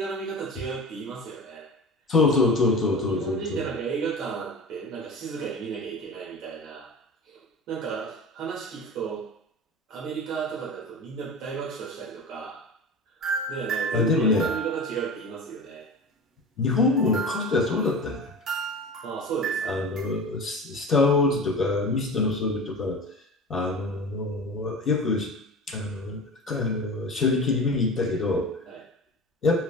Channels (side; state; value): both; normal; correlation 0.33